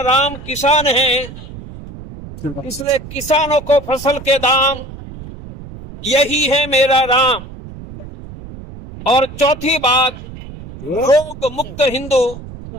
राम किसान है, इसलिए किसानों को फसल के दाम, यही है मेरा राम। और चौथी बात, रोग मुक्त हिंदू,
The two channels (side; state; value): right; noise; rumble, 14 dB below the sound